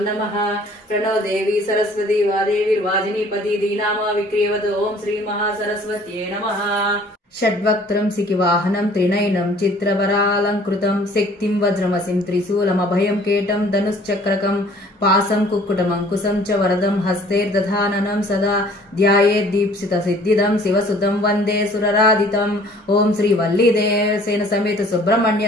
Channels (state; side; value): normal; both; correlation 0.54